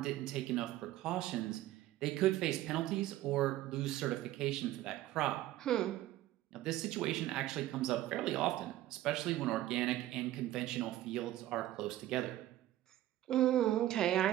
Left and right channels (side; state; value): left; quieter; 14.6 dB